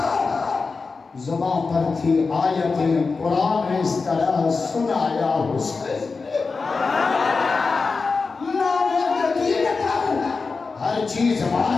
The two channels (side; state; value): right; quieter; 4.4 dB